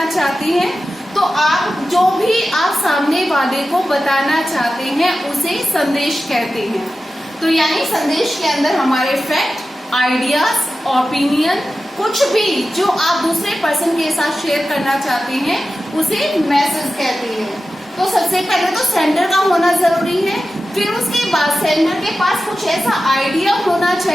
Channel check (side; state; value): both; normal; correlation 0.93